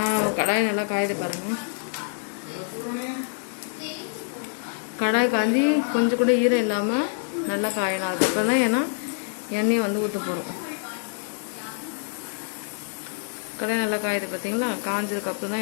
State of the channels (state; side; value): silent; right; digital silence